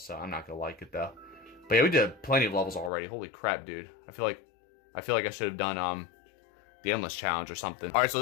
I'm not gonna like it though. But yeah, we did plenty of levels already. Holy crap, dude! I feel like I should have done the endless challenge or something. All right, so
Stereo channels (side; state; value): right; drops out; at 2.9 s